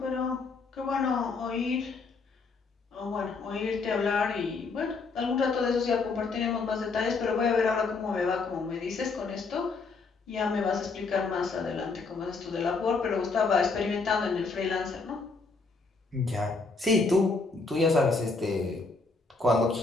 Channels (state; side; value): quieter; right; 4.1 dB